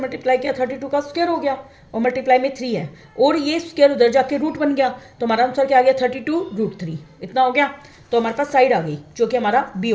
किया, 32 का स्क्वायर हो गया, और मल्टीप्लाई में 3 है, और ये स्क्वायर उधर जाके रूट बन गया। तो हमारा आंसर क्या आ गया, 32√3, इतना हो गया। तो हमारे पास साइड आ गई, जो कि हमारा बी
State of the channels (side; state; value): both; identical; correlation 1.00